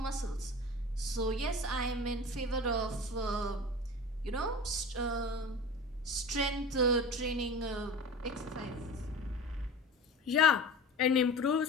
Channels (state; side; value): normal; both; correlation 0.35